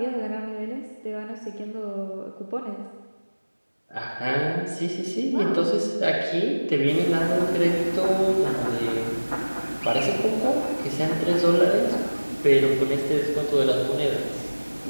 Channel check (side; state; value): both; inverted; correlation -1.00